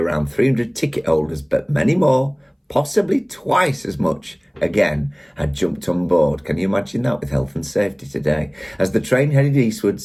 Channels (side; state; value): both; identical; correlation 1.00